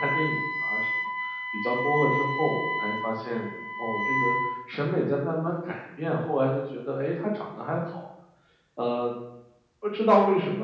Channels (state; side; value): identical; both; correlation 1.00